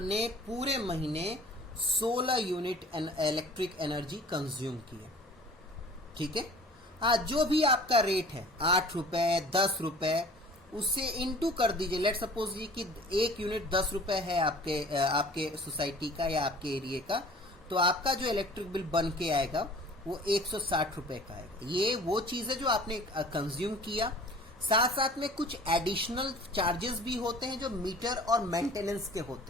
पूरे महीने 16 यूनिट इलेक्ट्रिक एनर्जी कंज्यूम की है, ठीक है। जो भी आपका रेट है 8 रुपए 10 रुपए, उससे इनटू कर दीजिए। लेट सपोज कि 1 यूनिट 10 रुपए है आपके सोसाइटी का या आपके एरिया का, तो आपका जो इलेक्ट्रिक बिल बन के आएगा वो 160 रुपए का आएगा। ये वो चीज़ है जो आपने कंज्यूम किया। साथ साथ में कुछ एडिशनल चार्जेस भी होते हैं जो मीटर और मेंटेनेंस के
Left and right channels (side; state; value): both; normal; correlation 0.47